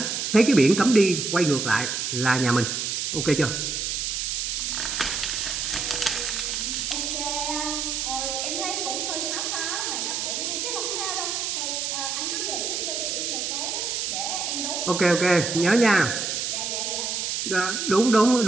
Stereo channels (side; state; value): right; noise; hiss, 1 dB below the sound